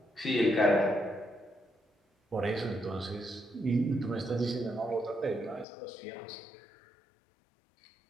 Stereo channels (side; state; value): right; drops out; at 5.7 s